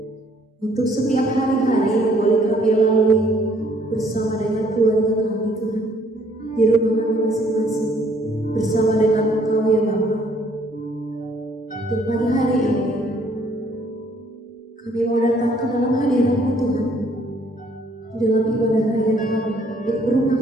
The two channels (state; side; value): normal; both; correlation 0.64